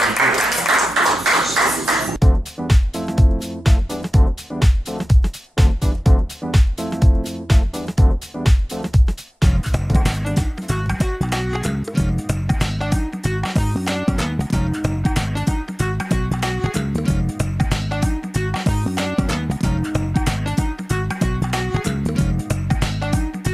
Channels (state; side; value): normal; both; correlation 0.96